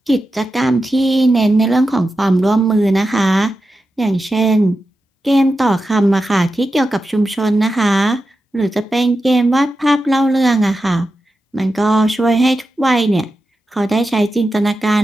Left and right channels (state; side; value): normal; both; correlation 0.91